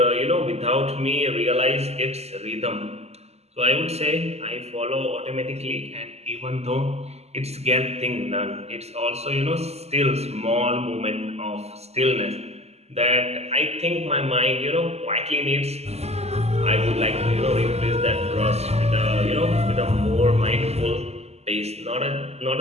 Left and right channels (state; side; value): late; left; 0.30 ms